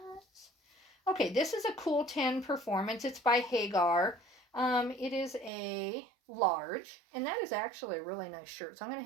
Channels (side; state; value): left; drops out; at 5.5 s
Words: Okay, this is a Cool 10 Performance. It's by Hagar. It is a large, and that is actually a really nice shirt. So I'm going